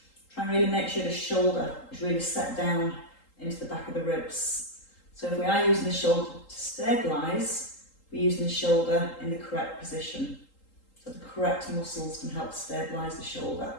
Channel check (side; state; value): right; late; 3.8 ms